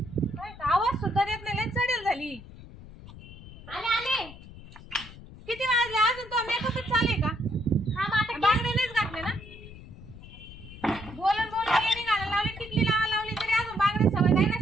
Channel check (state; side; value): noise; left; rumble, 17 dB below the sound